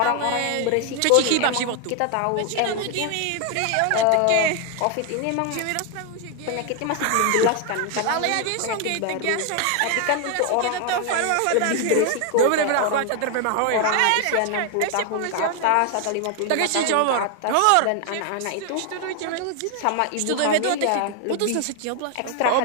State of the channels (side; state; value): both; different; correlation 0.00